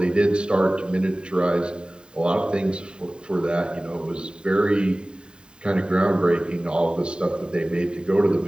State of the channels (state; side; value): late; left; 0.049 ms